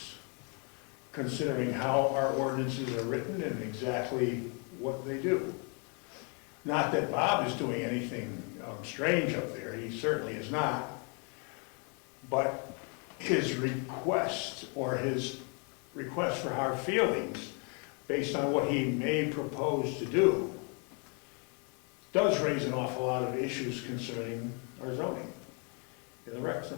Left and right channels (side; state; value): right; quieter; 36.6 dB